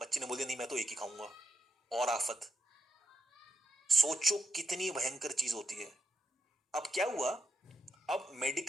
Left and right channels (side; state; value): both; normal; correlation 0.84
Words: बच्चे ने बोल दिया नहीं मैं तो एक ही खाऊंगा, और आफत। सोचो कितनी भयंकर चीज होती है। अब क्या हुआ, अब